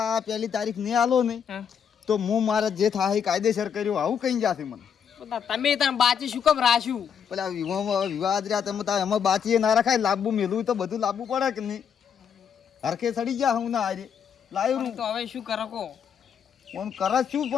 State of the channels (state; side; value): quieter; right; 7.6 dB